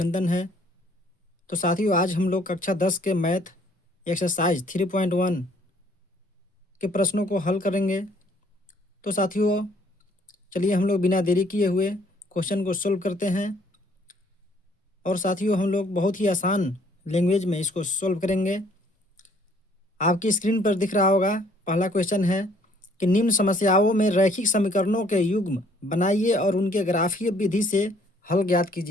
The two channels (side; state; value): both; normal; correlation 0.61